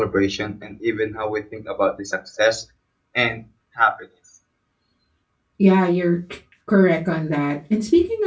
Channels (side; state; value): both; identical; correlation 1.00